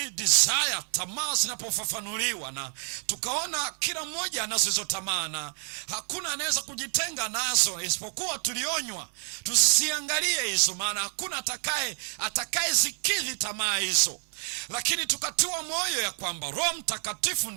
desire, tamaa zinapofafanuliwa, na tukaona kila mmoja anazo tamaa na hakuna anaweza kujitenga nazo, isipokuwa tulionywa tusisiangalie hizo, maana hakuna atakaye zikidhi tamaa hizo. Lakini tukatoa moyo ya kwamba Roho Mtakatifu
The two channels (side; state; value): left; silent; 59 dB below the other